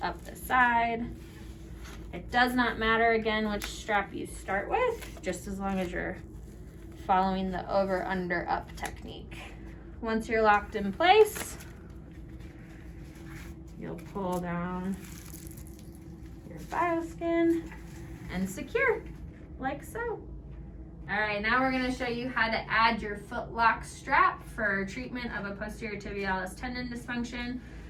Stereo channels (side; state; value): both; identical; correlation 1.00